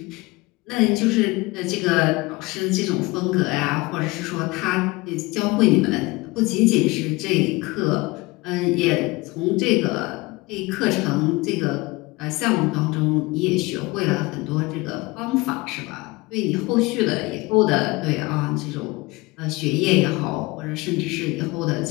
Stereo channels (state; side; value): quieter; right; 22.9 dB